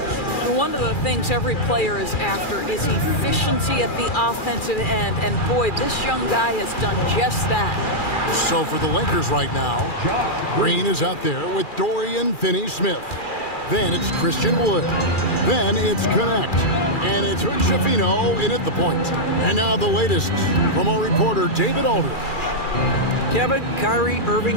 And one of the things every player is after is efficiency at the offensive end. And boy, this young guy has done just that. So for the Lakers right now, Green is out there with Dorian Finney-Smith. Then it's Christian Wood. Then it's Connect. And it's Hood Schifino in at the point. And now the latest from our reporter, David Aldridge. Kevin, Kyrie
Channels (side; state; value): right; late; 2.4 ms